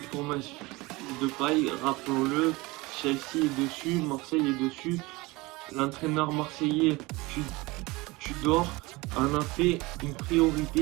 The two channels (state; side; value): quieter; left; 22.7 dB